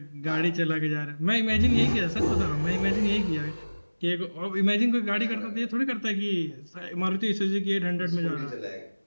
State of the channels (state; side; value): inverted; both; correlation -1.00